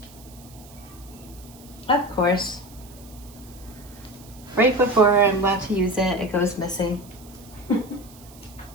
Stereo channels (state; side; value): noise; right; hiss, 22 dB below the sound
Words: that? Of course. Right before I'm about to use it, it goes missing.